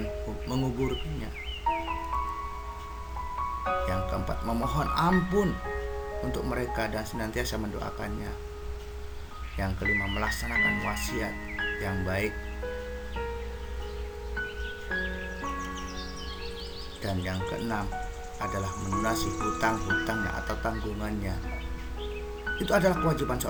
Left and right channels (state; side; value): identical; both; correlation 1.00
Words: menguburkannya. Yang keempat, memohon ampun untuk mereka dan senantiasa mendoakannya. Yang kelima, melaksanakan wasiat yang baik. Dan yang keenam adalah melunasi hutang-hutangnya atau tanggungannya. Itu adalah kewajiban